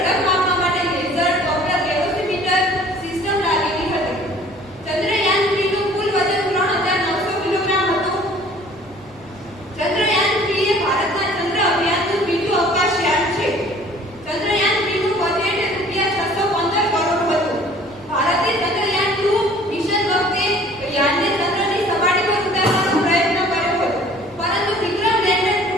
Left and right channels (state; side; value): noise; left; rumble, 26 dB below the sound